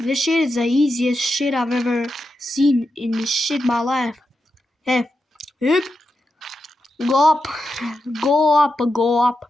shit is the easiest shit I've ever seen in this shit my life. Hey. Hup. Go up. Go up. Go up.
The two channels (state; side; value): normal; both; correlation 0.88